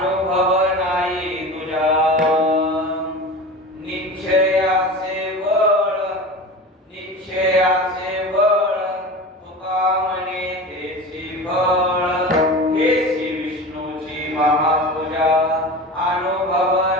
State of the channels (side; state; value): both; normal; correlation 0.31